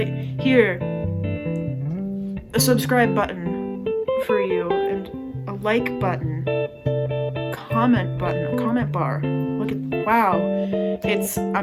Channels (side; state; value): both; identical; correlation 1.00